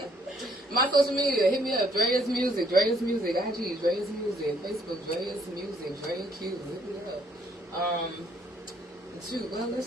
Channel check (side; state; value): both; normal; correlation 0.66